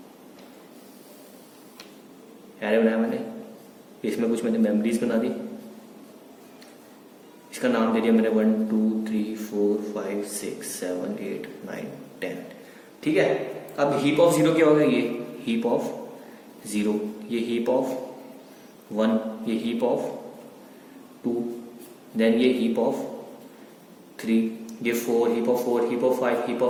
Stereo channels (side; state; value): both; identical; correlation 1.00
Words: इसमें कुछ मैंने मेमोरीज बना दी, इसका नाम दे दिया मैंने 1 2 3 4 5 6 7 8 9 10, ठीक है। अब हीप ऑफ जीरो क्या होगा, ये हीप ऑफ जीरो, ये हीप ऑफ 1, ये हीप ऑफ 2, देन ये हीप ऑफ 3, ये 4, heap of 4, heap of 5, heap